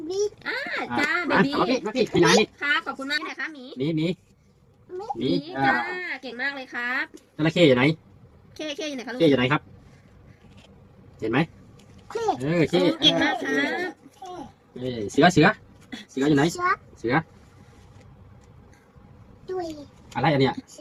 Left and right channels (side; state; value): both; identical; correlation 1.00